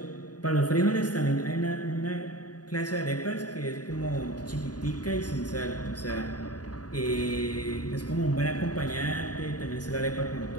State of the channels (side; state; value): right; late; 0.68 ms